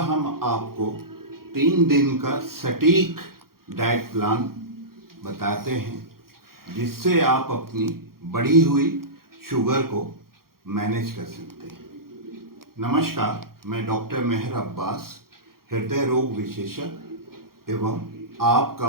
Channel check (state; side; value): late; left; 0.93 ms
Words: आपको 3 दिन का सटीक डाइट प्लान बताते हैं जिससे आप अपनी बढ़ी हुई शुगर को मैनेज कर सकते हैं। नमस्कार, मैं डॉक्टर मेहर अब्बास, हृदय रोग विशेषज्ञ एवं